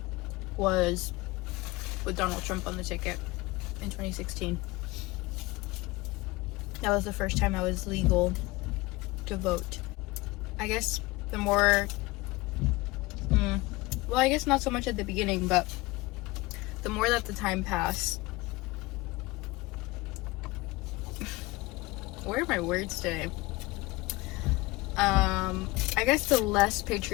was with Donald Trump on the ticket in 2016. That was the first time I was legal to vote. I guess the more, well, I guess not so much at the beginning, but the more that the time passed, where are my words today? I guess the less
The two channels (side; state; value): right; quieter; 21.7 dB